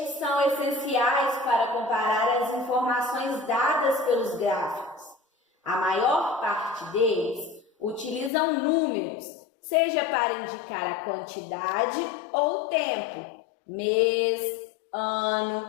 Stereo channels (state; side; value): drops out; right; at 8.3 s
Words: são essenciais para comparar as informações dadas pelos gráficos. A maior parte deles utilizam números, seja para indicar a quantidade ou tempo, mês, ano,